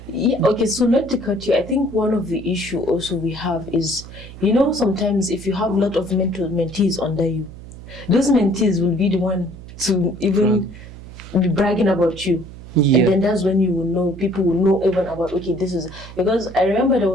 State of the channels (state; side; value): noise; right; hum, 15 dB below the sound